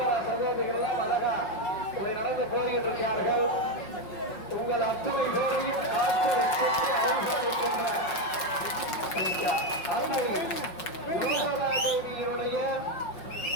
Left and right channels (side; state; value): right; late; 5.5 ms